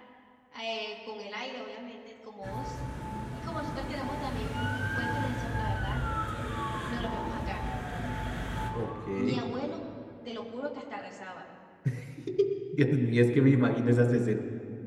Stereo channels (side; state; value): both; identical; correlation 1.00